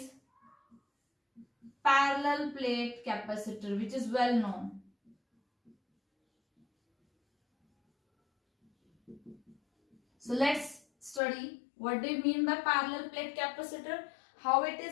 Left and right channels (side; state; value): right; drops out; at 11.2 s